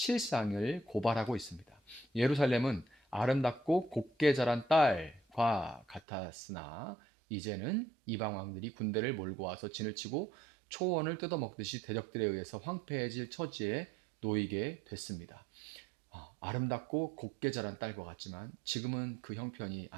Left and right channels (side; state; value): left; drops out; at 6.0 s